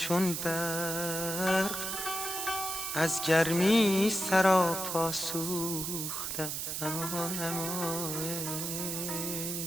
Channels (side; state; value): right; noise; hiss, 3 dB below the sound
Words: برق از گرمی سراپا سوختم. اما